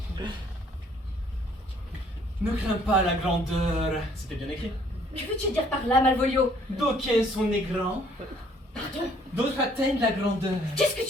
Ne crains pas la grandeur. C'était bien écrit. Que veux-tu dire par là, Malvolio? D'aucuns sont nés grands, Pardon? d'autres atteignent la grandeur. Qu'est-ce que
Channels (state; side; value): normal; both; correlation 0.61